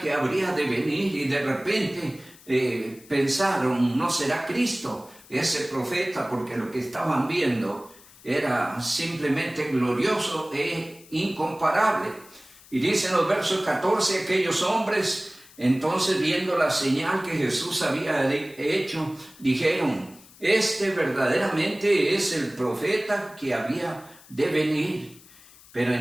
habría de venir, y de repente pensaron, ¿no será Cristo ese profeta? Porque lo que estaban viendo era simplemente glorioso e incomparable. Y dicen los versos 14, aquellos hombres, entonces viendo la señal que Jesús había hecho, dijeron, este verdaderamente es el profeta que había de venir. Pero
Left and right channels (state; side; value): noise; left; hiss, 23 dB below the sound